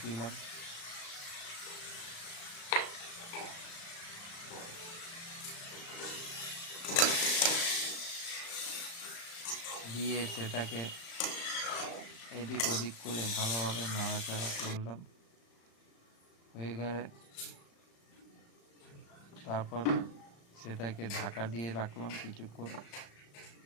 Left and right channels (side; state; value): right; late; 35 ms